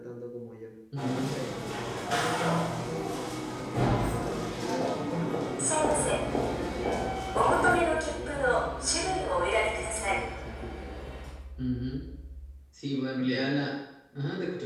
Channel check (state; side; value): identical; both; correlation 1.00